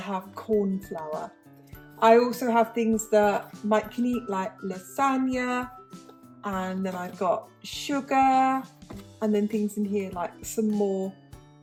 corn flour. I also have things that Mike can eat, like lasagna, and then I've got sugar, and then things in here like some more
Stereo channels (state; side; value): identical; both; correlation 1.00